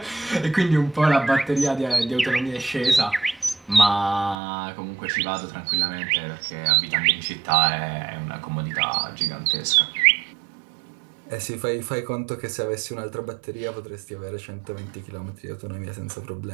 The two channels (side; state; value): left; drops out; at 4.4 s